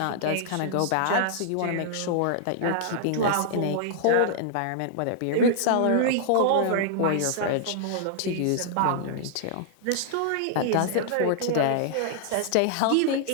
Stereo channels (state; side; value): different; both; correlation -0.01